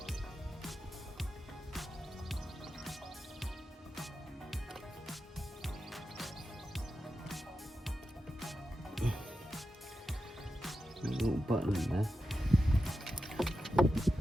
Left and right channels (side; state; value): both; normal; correlation 0.91